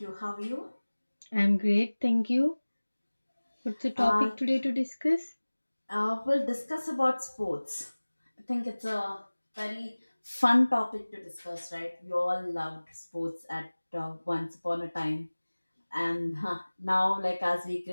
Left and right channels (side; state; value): both; inverted; correlation -1.00